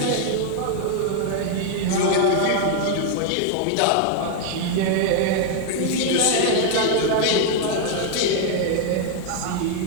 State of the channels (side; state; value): both; different; correlation 0.00